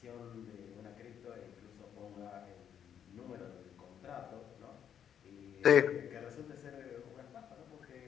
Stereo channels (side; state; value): right; quieter; 8.8 dB